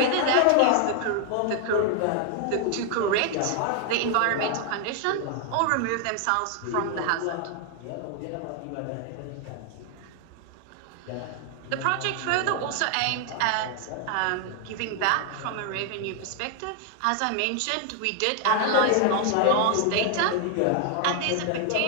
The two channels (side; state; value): both; different; correlation 0.00